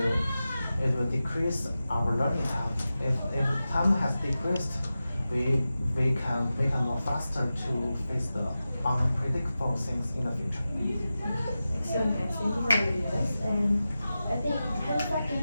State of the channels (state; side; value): inverted; both; correlation -0.93